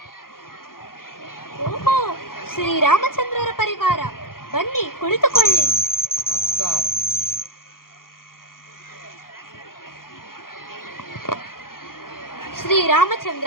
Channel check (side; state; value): right; late; 0.91 ms